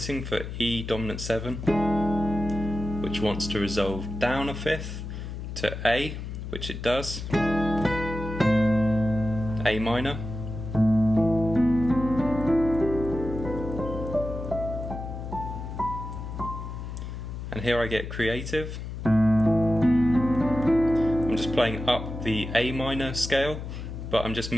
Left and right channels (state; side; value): noise; left; hum, 7 dB below the sound